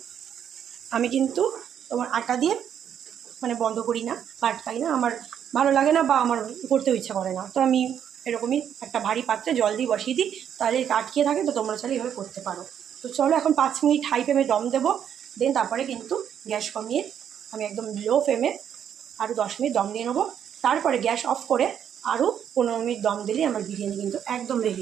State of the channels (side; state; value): left; quieter; 9.0 dB